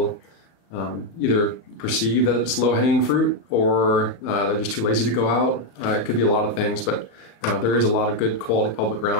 either perceive that it's low-hanging fruit, or they're just too lazy to go out. It could be a lot of things, but there is a lot of good quality public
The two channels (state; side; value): late; right; 35 ms